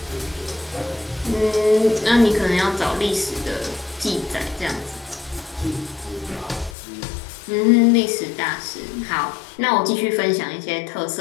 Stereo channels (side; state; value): right; drops out; at 6.8 s